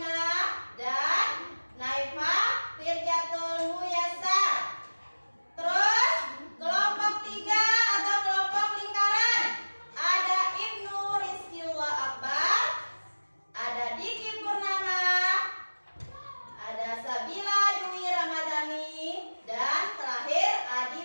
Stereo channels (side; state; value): both; inverted; correlation -1.00